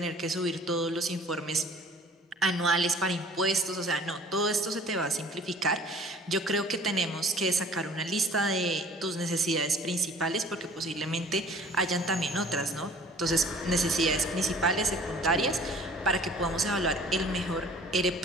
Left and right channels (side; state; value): both; normal; correlation 0.50